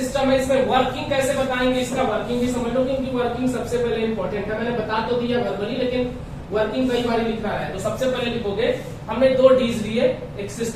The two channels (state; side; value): identical; both; correlation 1.00